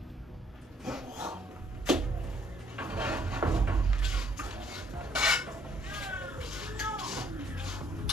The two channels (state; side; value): normal; both; correlation 0.65